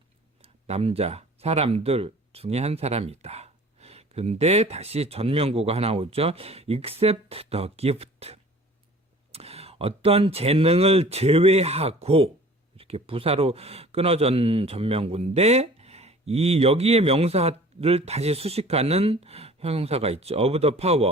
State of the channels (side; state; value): both; normal; correlation 0.47